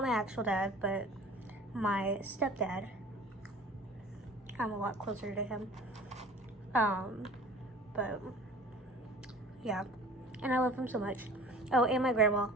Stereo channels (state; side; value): normal; both; correlation 0.44